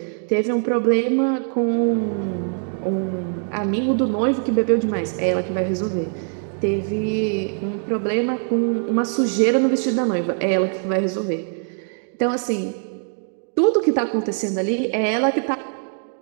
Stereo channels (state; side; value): silent; left; 64 dB below the other